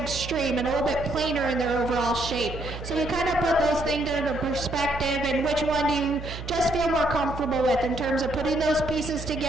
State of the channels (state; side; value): noise; right; hum, 9 dB below the sound